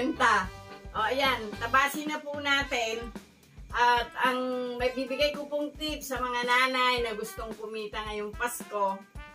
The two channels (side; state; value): both; identical; correlation 1.00